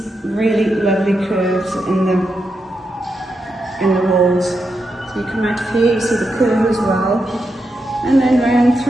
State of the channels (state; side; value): normal; both; correlation 0.85